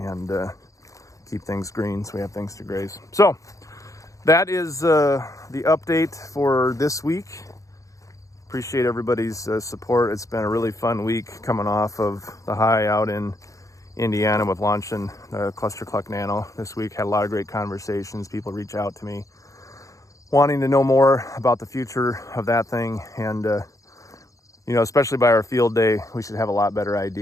keep things green so we have things to graze. So that is the update for this week. Appreciate everybody's support. It's been a really fun week coming off of the high out in Indiana with launching the ClusterCluck Nano this week. Had a lot of great conversations. People reach out to me wanting to know more about the future of that thing. And, you know, especially by our field day, we should have a lot better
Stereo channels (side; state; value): right; late; 0.16 ms